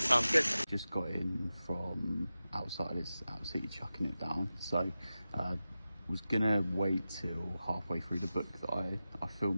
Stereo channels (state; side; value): inverted; both; correlation -0.93